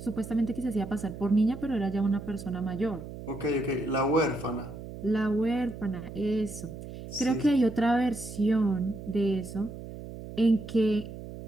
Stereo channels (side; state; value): right; noise; hum, 11 dB below the sound